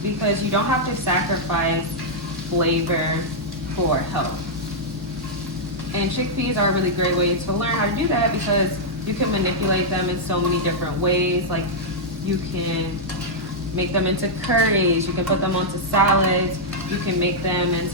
because you don't have to sacrifice flavor for health. And chickpeas are a really great way to learn how to do that, because you can manipulate them in so many different ways. Like you can make them into curries, you can put them onto salads, you can make them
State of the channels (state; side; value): normal; both; correlation -0.05